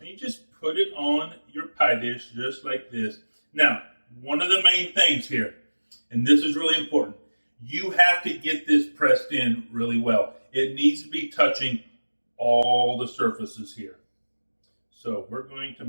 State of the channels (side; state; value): both; inverted; correlation -1.00